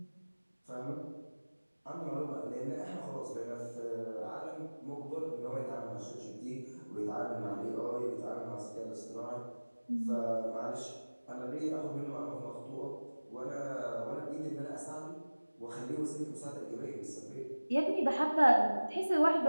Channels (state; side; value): inverted; both; correlation -1.00